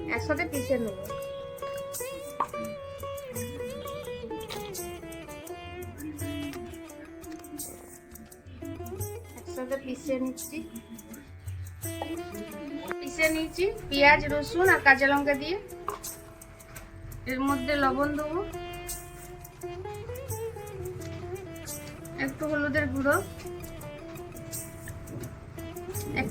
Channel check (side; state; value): both; identical; correlation 1.00